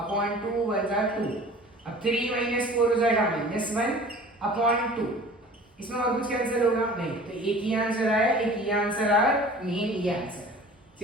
अपॉन 2 1 जा 2, अब 3 - 4 हो जाएगा -1 अपॉन 2, इसमें और कुछ कैंसिल होगा, नहीं, तो एक ही आंसर आया, एक ही आंसर आया, मेन ये आंसर है,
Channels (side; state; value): both; normal; correlation 0.44